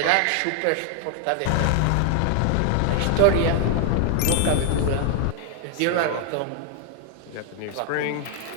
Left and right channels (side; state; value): both; different; correlation 0.00